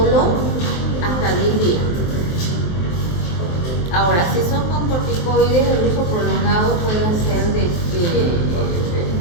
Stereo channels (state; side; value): late; right; 23 ms